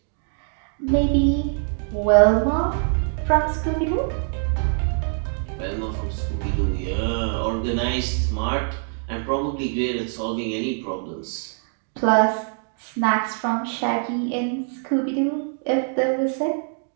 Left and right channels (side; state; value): left; silent; 62 dB below the other